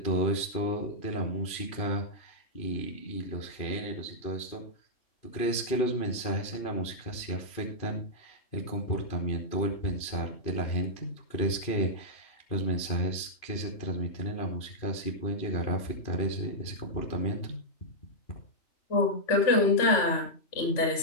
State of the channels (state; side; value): late; right; 2.5 ms